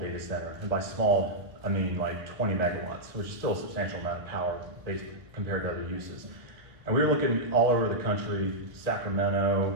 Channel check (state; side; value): late; left; 1.9 ms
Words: center, and by small, I mean like 20 megawatts, which is still a substantial amount of power based compared to other uses. And we were looking all over the country,